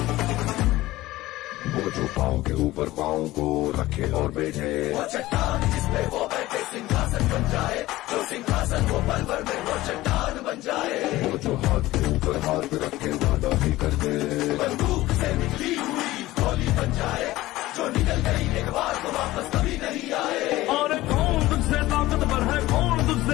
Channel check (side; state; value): right; quieter; 17.3 dB